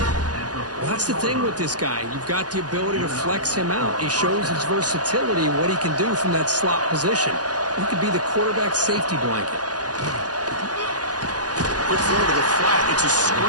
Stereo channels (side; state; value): left; late; 0.68 ms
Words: Well, that's the thing with this guy. You've got the ability to flex him out. He shows his versatility and what he can do from that slot position. He could be the quarterback safety blanket. Quick throw to the flat. It's a